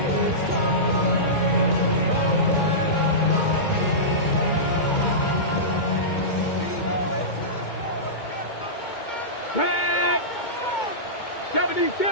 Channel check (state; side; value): late; right; 2.2 ms